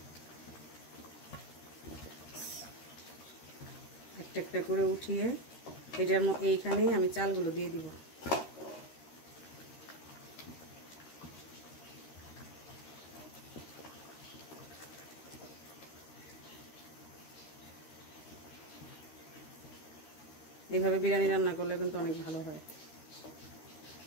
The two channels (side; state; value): right; late; 13 ms